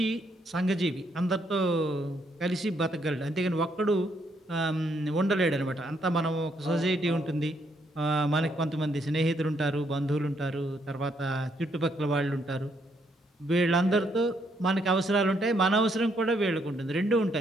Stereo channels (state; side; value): normal; both; correlation 0.73